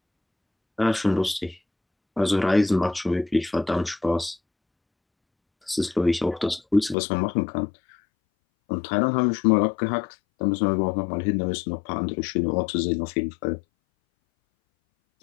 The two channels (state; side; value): drops out; right; at 7.0 s